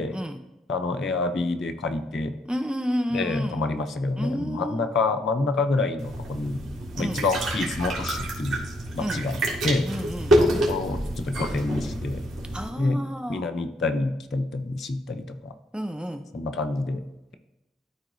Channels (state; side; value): normal; both; correlation 0.73